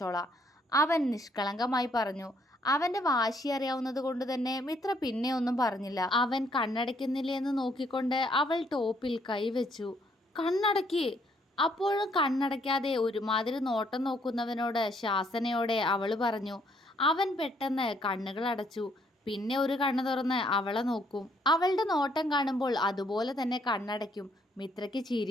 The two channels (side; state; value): both; normal; correlation 0.68